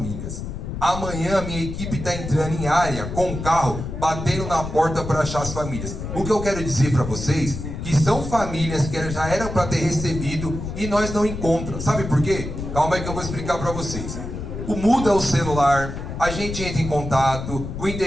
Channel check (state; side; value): noise; left; rumble, 7 dB below the sound